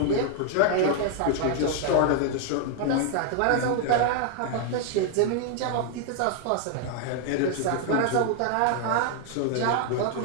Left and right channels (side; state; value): both; different; correlation 0.00